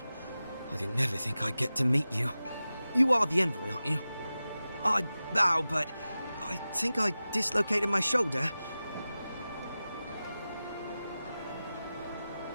I didn't never think I'd get to meet you. You are the envoy, aren't you? I bow, but I think I dislocated my shoulder.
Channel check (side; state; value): both; inverted; correlation -0.95